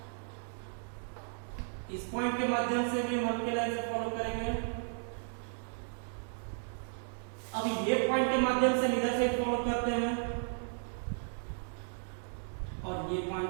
इस पॉइंट के माध्यम से भी हम हल्के लाइन से फॉलो करेंगे। अब ये पॉइंट के माध्यम से इधर से फॉलो करते हैं, और ये पॉइंट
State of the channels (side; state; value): left; silent; digital silence